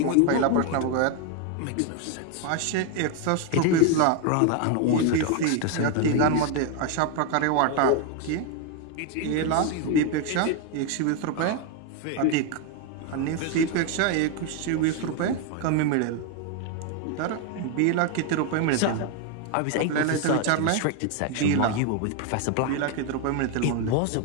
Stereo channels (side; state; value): both; different; correlation 0.01